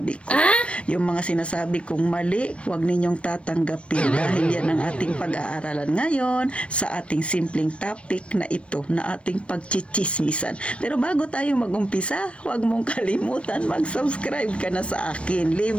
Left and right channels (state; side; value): late; right; 0.060 ms